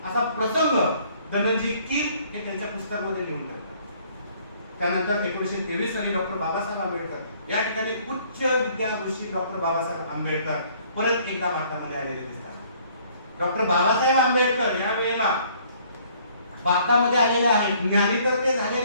असा प्रसंग धनंजय कीर हे त्यांच्या पुस्तकामध्ये लिहून ठेवतात. त्यानंतर 1923 साली डॉक्टर बाबासाहेब आंबेडकर या ठिकाणी उच्च विद्याभूषी डॉक्टर बाबासाहेब आंबेडकर परत एकदा भारतामध्ये आलेले दिसतात. डॉक्टर बाबासाहेब आंबेडकर या वेळेला भारतामध्ये आलेले आहेत, ज्ञानी तर ते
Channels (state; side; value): inverted; both; correlation -0.60